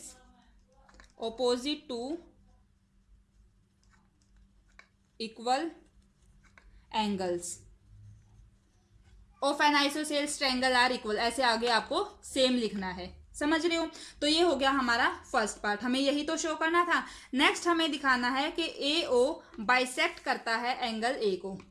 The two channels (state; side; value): identical; both; correlation 1.00